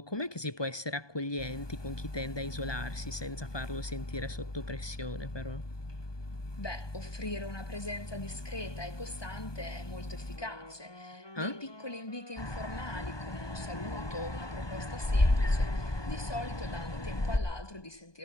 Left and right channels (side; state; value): right; late; 1.2 ms